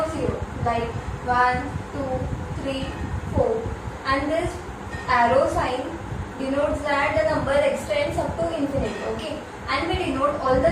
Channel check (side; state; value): both; identical; correlation 1.00